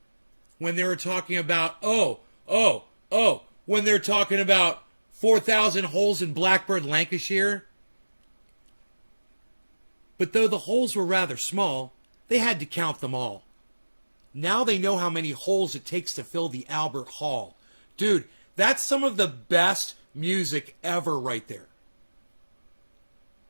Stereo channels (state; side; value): inverted; both; correlation -1.00